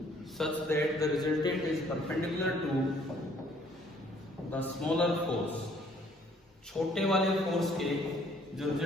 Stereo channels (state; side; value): normal; both; correlation 0.61